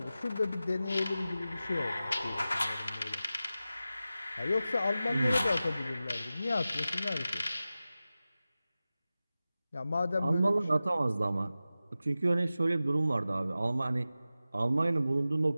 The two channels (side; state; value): both; inverted; correlation -0.95